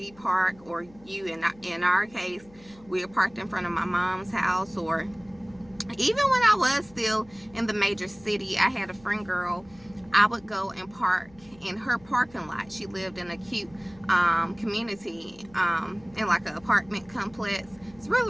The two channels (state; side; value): noise; left; hum, 25 dB below the sound